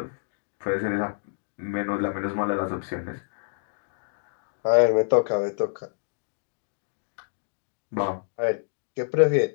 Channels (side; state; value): right; silent; digital silence